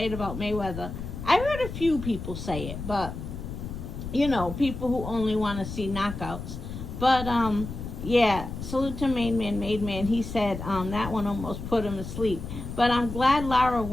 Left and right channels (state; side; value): noise; left; rumble, 8 dB below the sound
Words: it about Mayweather. I heard a few people say it, but, you know, people who only want to see knockouts. But, yeah, salute to Main Man, Made Man. He said that one almost put him to sleep. But I'm glad Lara